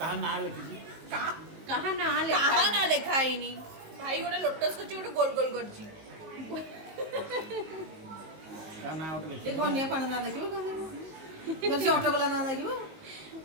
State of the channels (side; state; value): left; late; 19 ms